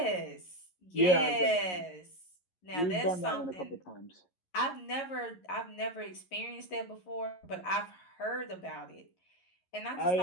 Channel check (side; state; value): right; late; 11 ms